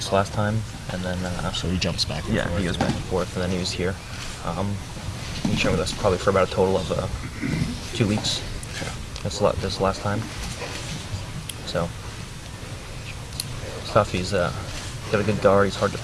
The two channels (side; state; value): both; identical; correlation 1.00